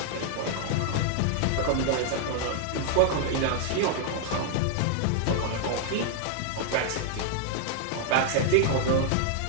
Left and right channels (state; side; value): different; both; correlation 0.00